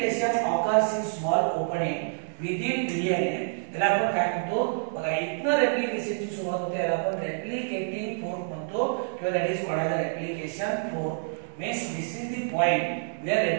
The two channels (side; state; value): left; silent; digital silence